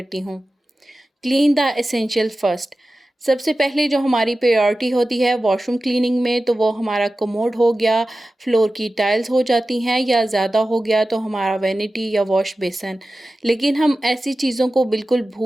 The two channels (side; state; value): both; normal; correlation 0.95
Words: हूँ। Clean the essential first. सबसे पहले जो हमारी प्रायोरिटी होती है वॉशरूम क्लीनिंग में, तो वो हमारा कमोड हो गया, फ्लोर की टाइल्स हो जाती हैं, या ज़्यादा हो गया तो हमारा वैनिटी या वॉश बेसन। लेकिन हम ऐसी चीज़ों को बिल्कुल